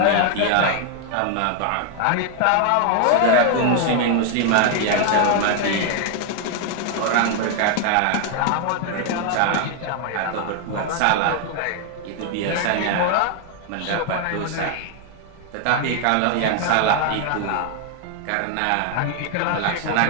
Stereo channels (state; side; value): different; both; correlation 0.00